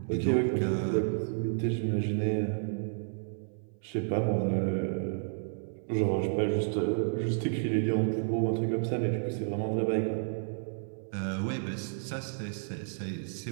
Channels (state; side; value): silent; left; 57 dB below the other